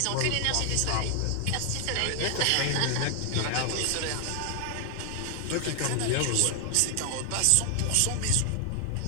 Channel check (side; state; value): both; different; correlation 0.00